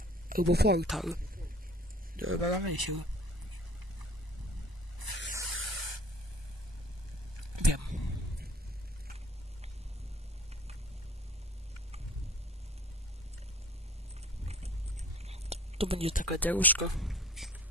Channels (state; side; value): normal; both; correlation 0.48